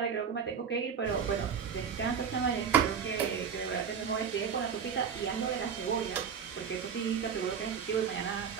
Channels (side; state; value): left; quieter; 7.0 dB